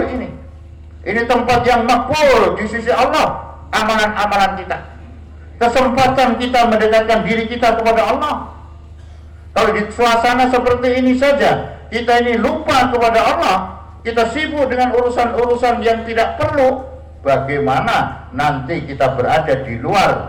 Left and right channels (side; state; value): both; identical; correlation 1.00